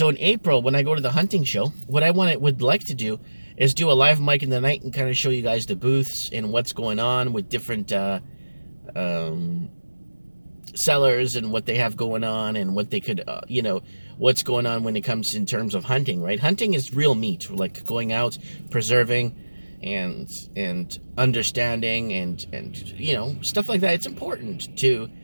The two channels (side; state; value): both; inverted; correlation -1.00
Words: in April, when I go to the hunting show, what I would like to do is do a live mic in the night and kind of show you guys the booths and what's going on with different sellers and what they have going on and what they could, what's going on when it comes in terms of hunting, right? Hunting is real meat, like going out, preserving, and understanding and stuff like that. It's important to